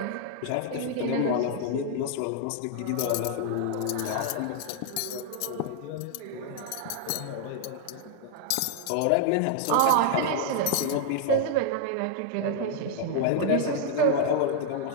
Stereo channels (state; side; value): different; both; correlation 0.00